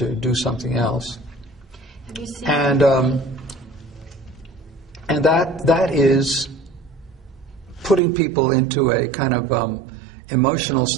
do something else. Have you seen and that is putting people into a kind of emotional,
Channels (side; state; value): left; drops out; at 8.0 s